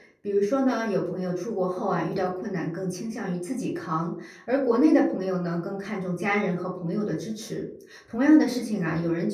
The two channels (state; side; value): identical; both; correlation 1.00